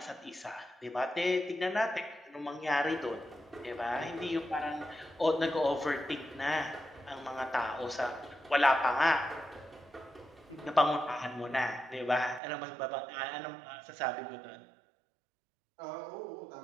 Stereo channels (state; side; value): drops out; left; at 12.4 s